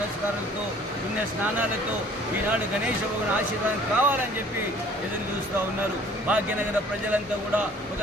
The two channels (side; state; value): both; normal; correlation 0.53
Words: పుణ్య స్నానాలతో ఈనాడు గణేశ భగవాన్ ఆశీర్వాదం కావాలని చెప్పి ఎదురు చూస్తూ ఉన్నారు. భాగ్యనగర ప్రజలంతా కూడా ఒక